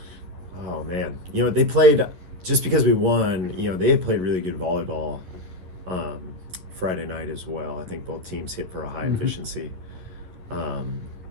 Oh man, they played, just because we won. They had played really good volleyball Friday night as well. I think both teams hit for a high efficiency.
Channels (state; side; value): late; left; 11 ms